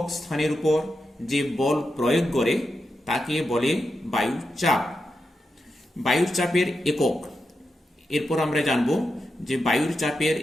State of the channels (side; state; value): both; normal; correlation 0.88